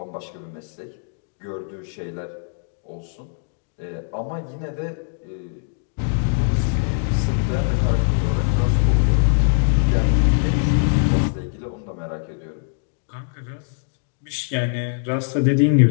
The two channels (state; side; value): silent; right; digital silence